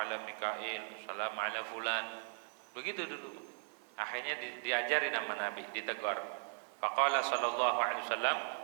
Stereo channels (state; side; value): quieter; left; 35.1 dB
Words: Mikail, assalamu ala fulan. Begitu dulu. Akhirnya diajari nama Nabi, ditegur. Faqala sallallahu alaihi wasallam,